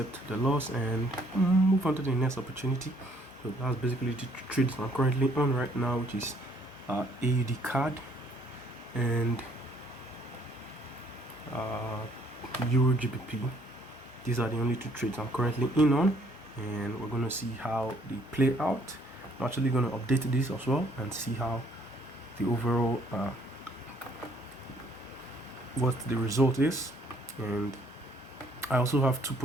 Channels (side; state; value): both; normal; correlation 0.64